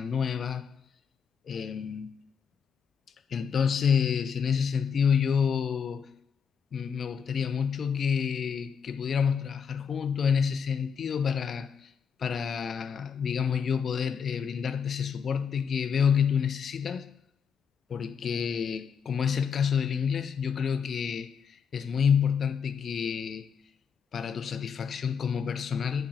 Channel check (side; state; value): right; quieter; 6.8 dB